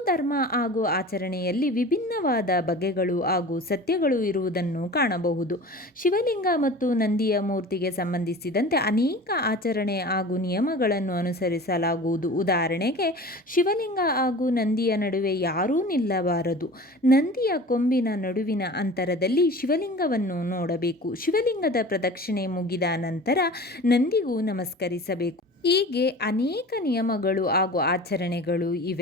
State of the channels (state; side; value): normal; both; correlation 0.38